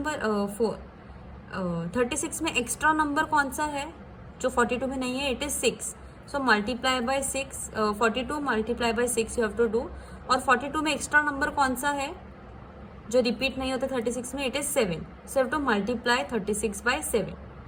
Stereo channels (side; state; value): both; identical; correlation 1.00